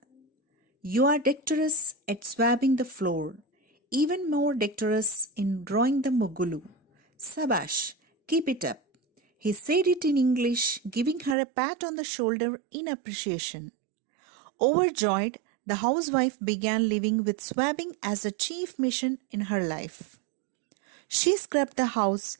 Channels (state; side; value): drops out; left; at 11.4 s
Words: "You are dexterous at swabbing the floor, even more dexterous in drawing the mugulu. Sabash, keep it up." He said it in English, giving her a pat on the shoulder in appreciation. Overjoyed, the housewife began living with swabbing as a chief mission in her life. She scrubbed the house